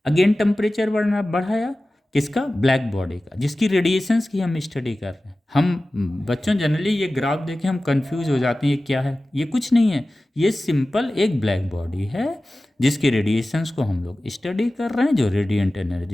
अगेन टेम्परेचर बढ़ाया, किसका, ब्लैक बॉडी का, जिसकी रेडिएशंस की हम स्टडी कर रहे हैं। हम बच्चों जनरली ये ग्राफ देखें हम कंफ्यूज हो जाते हैं, ये क्या है, ये कुछ नहीं है, ये सिंपल एक ब्लैक बॉडी है जिसकी रेडिएशंस को हम लोग स्टडी कर रहे हैं, जो रेडिएंट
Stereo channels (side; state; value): both; normal; correlation 0.96